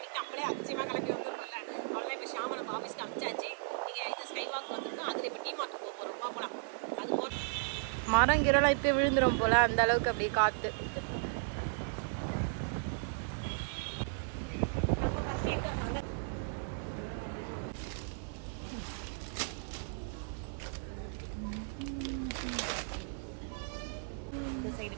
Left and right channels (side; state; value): left; silent; digital silence